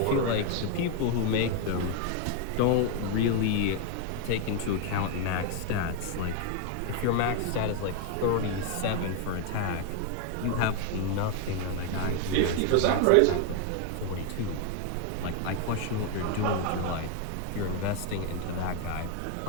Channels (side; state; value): both; different; correlation 0.01